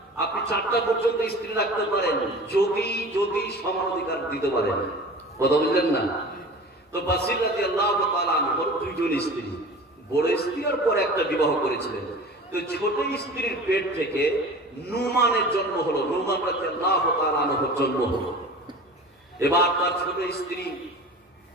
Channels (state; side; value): normal; both; correlation 0.38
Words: আপনি 4টা পর্যন্ত স্ত্রী রাখতে পারেন যদি সমান অধিকার দিতে পারেন। কথা বুঝলেন না? তো বাসির রাদিয়াল্লাহু তাআলা আনহুর 2 জন স্ত্রী, বড় স্ত্রীর পর একটা বিবাহ করেছিলেন। তো ছোট স্ত্রীর পেট থেকে নুমানের জন্ম হলো, নুমান রাদিয়াল্লাহু তাআলা আনহুর জন্ম হলো। এবার তার ছোট স্ত্রী